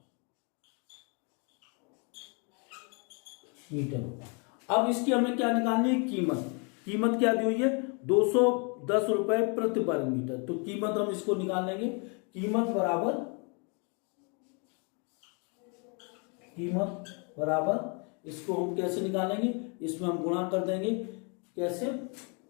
अब इसकी हमें क्या निकालनी है? कीमत क्या दी हुई है? 210 रुपए प्रति वर्ग मीटर। तो कीमत हम इसको निकाल लेंगे। कीमत बराबर इसको हम कैसे निकालेंगे? इसमें हम गुणा कर देंगे। कैसे?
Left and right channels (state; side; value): quieter; right; 35.4 dB